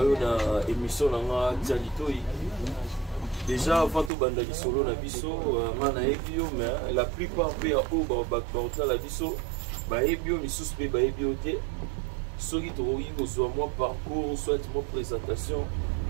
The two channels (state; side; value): drops out; left; at 4.1 s